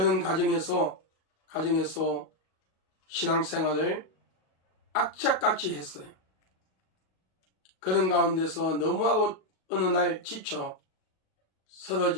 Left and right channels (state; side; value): late; right; 38 ms